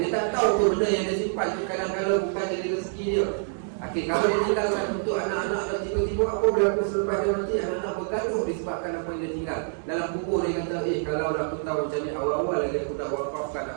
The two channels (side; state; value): left; silent; digital silence